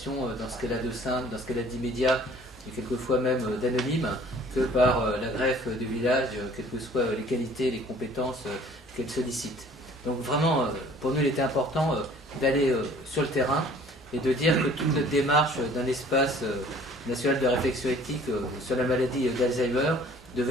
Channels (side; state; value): both; normal; correlation 0.53